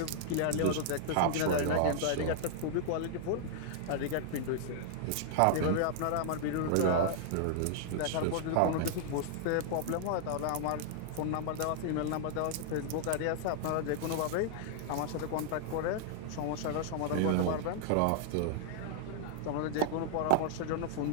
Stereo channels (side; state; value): both; different; correlation -0.01